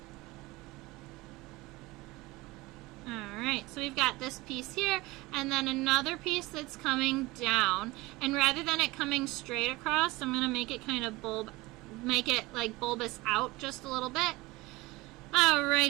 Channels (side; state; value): left; quieter; 21.1 dB